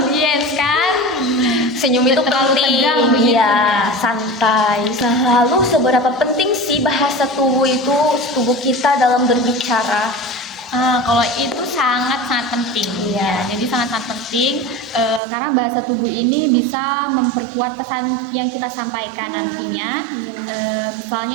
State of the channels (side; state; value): left; drops out; at 15.2 s